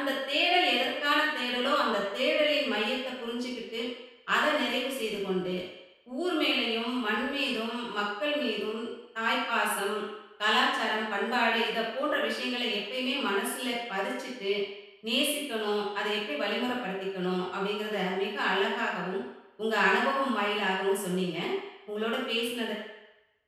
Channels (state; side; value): identical; both; correlation 1.00